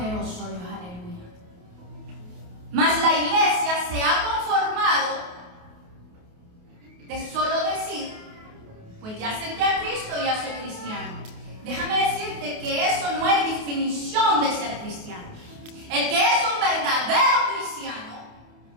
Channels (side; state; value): left; late; 28 ms